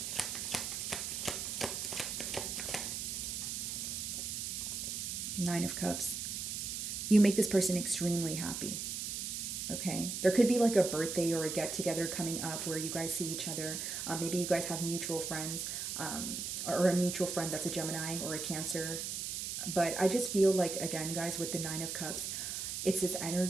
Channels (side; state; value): right; noise; hiss, 4 dB below the sound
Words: Nine of Cups. You make this person extremely happy. Okay, there could be like a birthday or a get together coming up where you guys see each other. Maybe you guys have mutual friends, or a mutual friend that's a Gemini or a Cancer. But I just feel like, again, guys, with the Nine of Cups, it's this